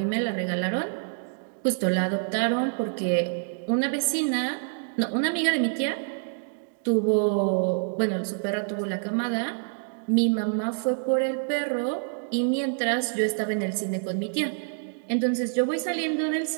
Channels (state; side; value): silent; left; digital silence